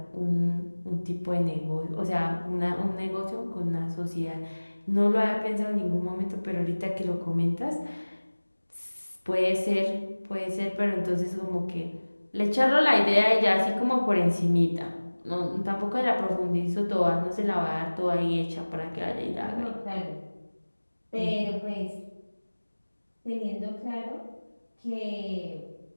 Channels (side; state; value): both; inverted; correlation -1.00